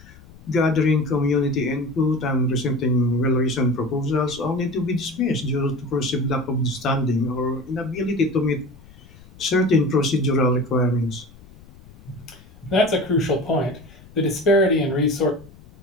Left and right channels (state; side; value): noise; left; rumble, 23 dB below the sound